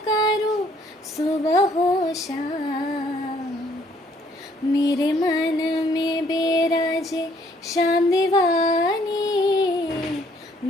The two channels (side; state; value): both; normal; correlation 0.64